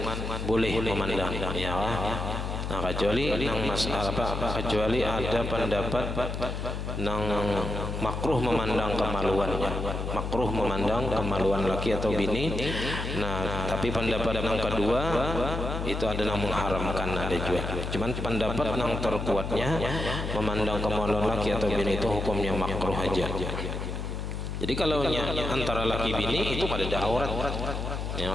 boleh memandang, ya. Nah kecuali nang masalah apa, kecuali ada pendapat nang makruh memandang kemaluannya, makruh memandang kemaluan laki atau bini. Nah tapi pendapat yang kedua itu ada yang mengharamkan, ada juga. Cuman pendapat yang terkuatnya memandang kemaluan laki atau bini itu hukumnya makruh aja. Jadi kalau antara laki bini itu kada ada aurat, yang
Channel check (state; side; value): noise; left; hum, 4 dB below the sound